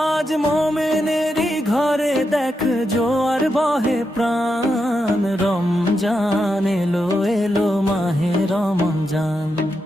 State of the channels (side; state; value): both; normal; correlation 0.85